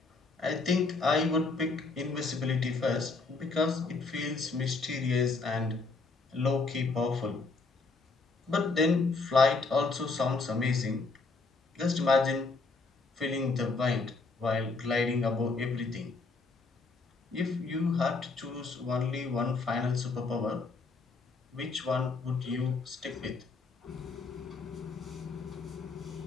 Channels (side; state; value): right; quieter; 3.9 dB